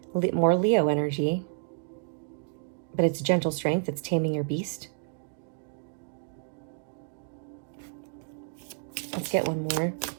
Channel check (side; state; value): left; silent; digital silence